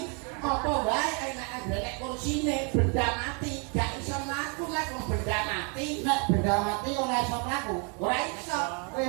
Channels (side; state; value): left; quieter; 36.2 dB